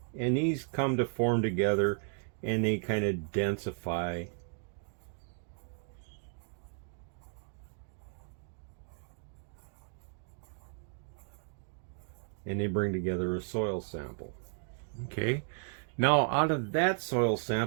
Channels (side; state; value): left; silent; 55 dB below the other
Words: And these come to form together and they kind of densify. And they bring together a soil sample. Okay. Now out of that soil